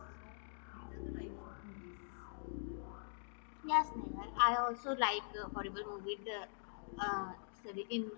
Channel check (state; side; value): silent; right; digital silence